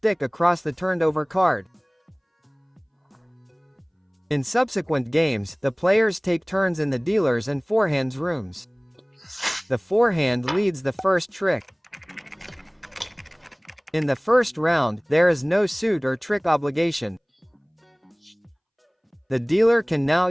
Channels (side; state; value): both; identical; correlation 1.00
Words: across the turned over card. In subsequent games, the players take turns in the dealer's and forehand's rooms. The forehand leads the first trick. In the first round, there is no suit or trick obligation. The dealer can now